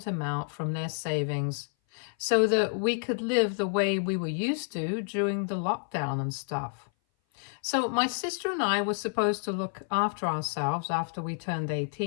amount from their savings so that we could live the way we were used to during the lockdown and stuff. So, my sister and I were supposed to look after ourselves after we turned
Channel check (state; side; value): silent; right; 57 dB below the other